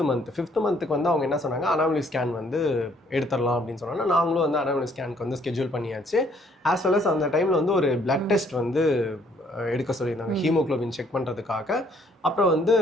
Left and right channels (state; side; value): normal; both; correlation 0.65